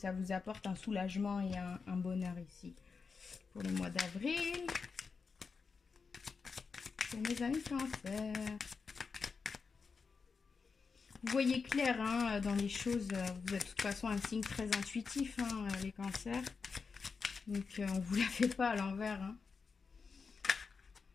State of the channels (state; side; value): quieter; right; 5.1 dB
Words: vous apporte un soulagement et un bonheur ici pour le mois d'avril. Pour mes amis Cancer. Vous voyez clair hein, dans les choses. Vous êtes de toute façon un signe très intuitif, hein, les Cancers. Donc, on ne vous la fait pas à l'envers. Hein.